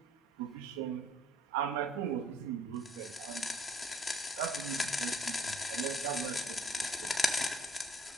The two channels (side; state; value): both; normal; correlation 0.60